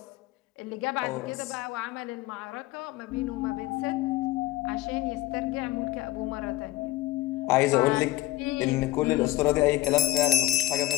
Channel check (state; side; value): quieter; right; 16.3 dB